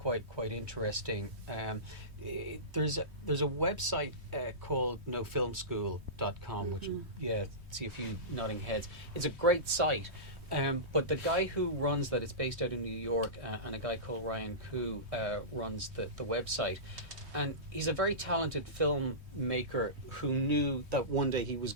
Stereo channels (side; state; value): left; late; 3.2 ms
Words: interesting. There's a website called nofilmschool.com, which see a few nodding heads. It's a great site, but the guy who runs that, it's based out in New York, and a guy called Ryan Koo runs the website. And he's a very talented filmmaker who knew that one day he was